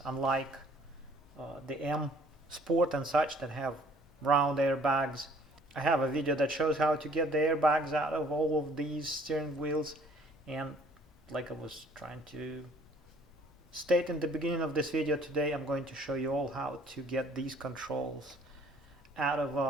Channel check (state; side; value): normal; both; correlation 0.58